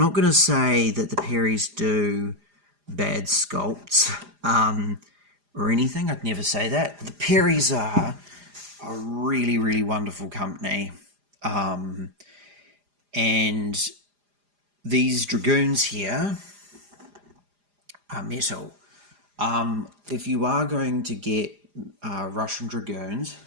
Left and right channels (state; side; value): late; left; 4.9 ms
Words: going to say that the Perrys do bad sculpts or anything. I'd never say that. The Perrys are a really, really wonderful company. And these dragoons here are metal. If you are going to get Russian dragoons,